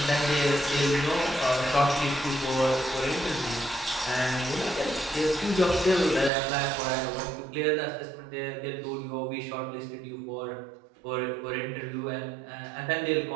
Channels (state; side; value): drops out; left; at 6.3 s